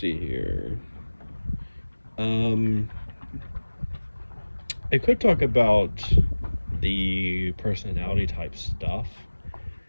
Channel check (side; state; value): both; inverted; correlation -1.00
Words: here. Um I could talk about the personality type stuff